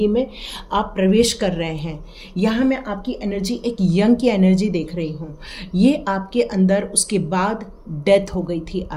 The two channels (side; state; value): both; identical; correlation 1.00